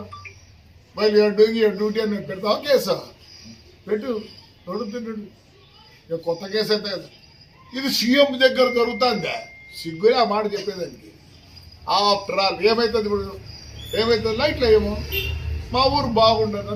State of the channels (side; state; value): both; identical; correlation 1.00